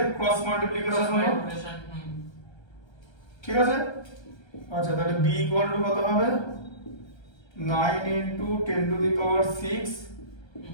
ক্রস মাল্টিপ্লিকেশন হলো ঠিক আছে আচ্ছা তাহলে b equal to কত হবে 9 into 10 to the power 6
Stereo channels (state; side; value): late; right; 1.3 ms